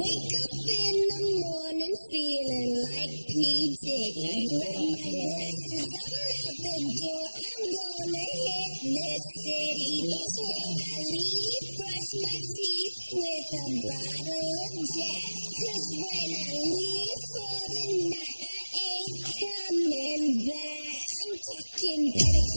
up in the morning feeling like P. Diddy. Grab my glasses, I'm out the door. I'm gonna hit this city. Before I leave, brush my teeth with a bottle of Jack. 'Cause when I leave for the night, I ain't coming back. I'm talking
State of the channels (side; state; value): both; inverted; correlation -1.00